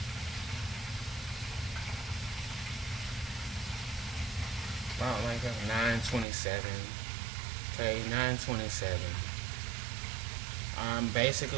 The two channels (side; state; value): left; drops out; at 6.2 s